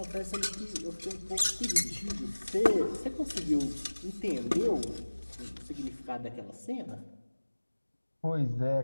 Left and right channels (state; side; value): inverted; both; correlation -1.00